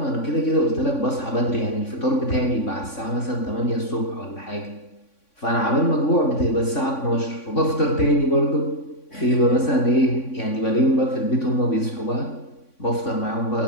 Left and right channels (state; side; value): late; right; 3.6 ms